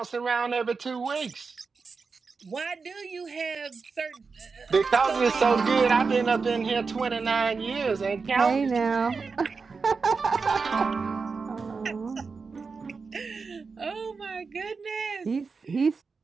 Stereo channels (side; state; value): left; quieter; 4.8 dB